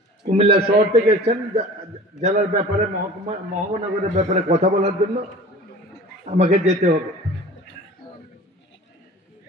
কুমিল্লা শহর থেকে এসেছেন জেলার ব্যাপারে, মহানগরের ব্যাপারে কথা বলার জন্য আমাকে যেতে হবে।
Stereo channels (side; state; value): both; normal; correlation 0.41